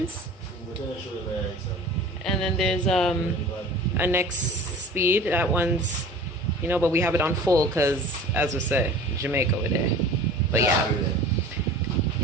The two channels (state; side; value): normal; both; correlation 0.41